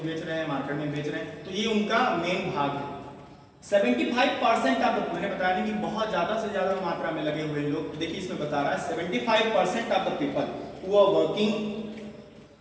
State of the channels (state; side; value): identical; both; correlation 1.00